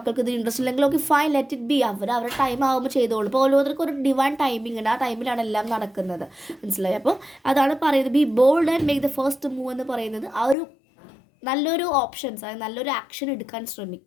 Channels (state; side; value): drops out; right; at 10.6 s